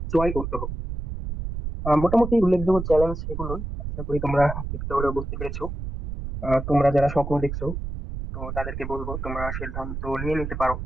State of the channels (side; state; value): right; noise; rumble, 6 dB below the sound